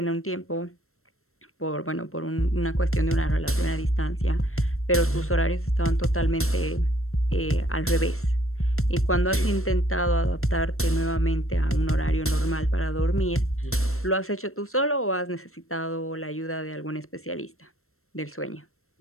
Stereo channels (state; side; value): late; right; 0.62 ms